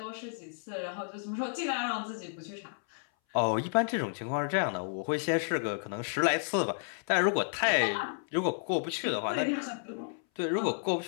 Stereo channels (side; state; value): right; silent; 57 dB below the other